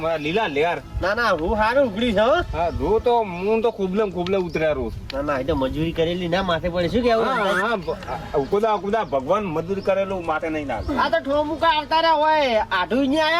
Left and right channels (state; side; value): identical; both; correlation 1.00